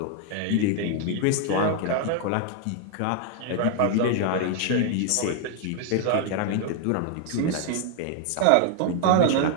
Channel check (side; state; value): both; different; correlation 0.00